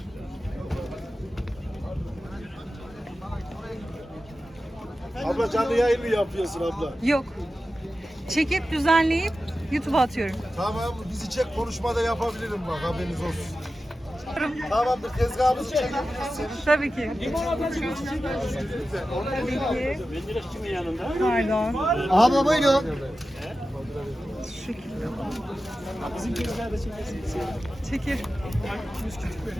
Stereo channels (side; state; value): both; normal; correlation 0.93